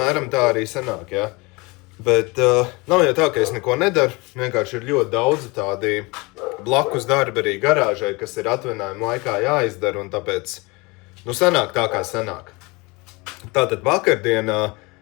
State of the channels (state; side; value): quieter; right; 25.8 dB